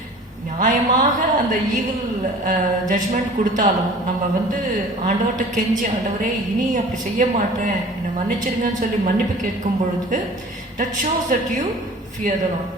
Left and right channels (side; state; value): both; normal; correlation 0.45